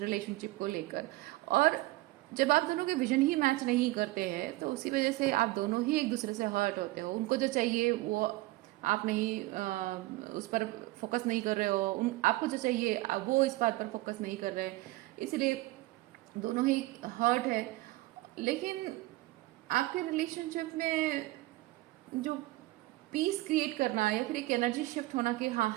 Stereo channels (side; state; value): left; quieter; 19.4 dB